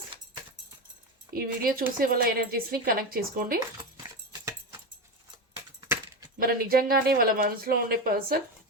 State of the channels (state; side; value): normal; both; correlation 0.17